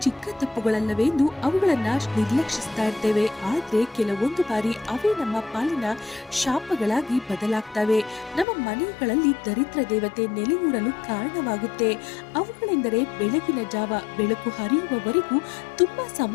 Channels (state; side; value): drops out; right; at 8.5 s